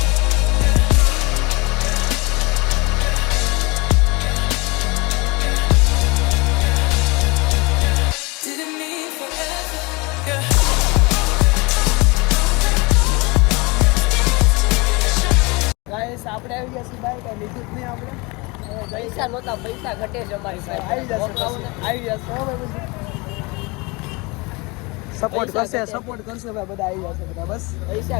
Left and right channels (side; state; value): right; quieter; 26.4 dB